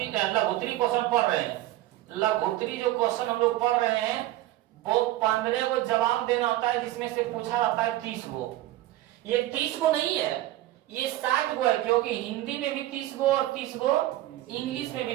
लघुत्तरी क्वेश्चन पढ़ रहे हैं, लघुत्तरी जो क्वेश्चन हम लोग पढ़ रहे हैं वो 15 को जवाब देना होता है, जिसमें से पूछा जाता है 30 को। ये 30 को नहीं है, ये 60 को है, क्योंकि हिंदी में भी 30 को और 30 को इंग्लिश में भी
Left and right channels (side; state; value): left; quieter; 15.6 dB